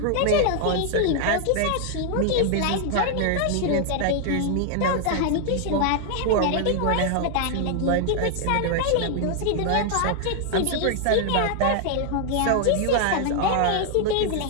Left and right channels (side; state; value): both; different; correlation 0.00